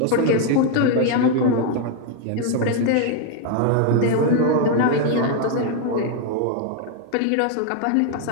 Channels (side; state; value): both; different; correlation 0.01